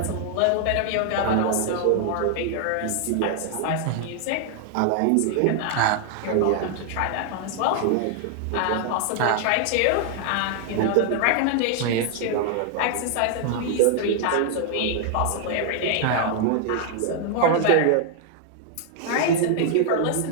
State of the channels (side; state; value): both; different; correlation 0.00